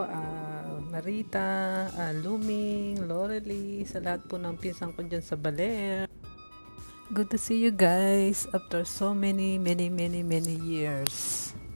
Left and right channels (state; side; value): inverted; both; correlation -1.00